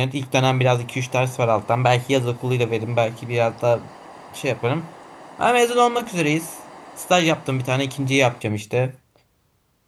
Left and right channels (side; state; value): both; identical; correlation 1.00